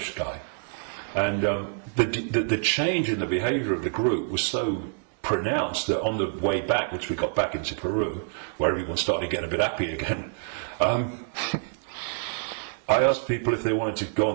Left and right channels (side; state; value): left; silent; digital silence